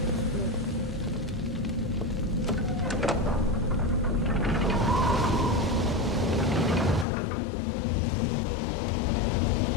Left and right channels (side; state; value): right; drops out; at 7.1 s